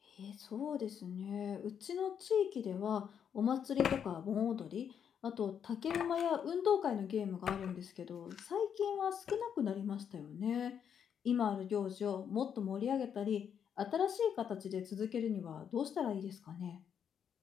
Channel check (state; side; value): quieter; right; 8.1 dB